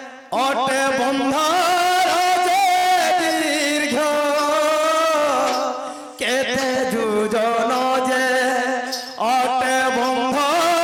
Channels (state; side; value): identical; both; correlation 1.00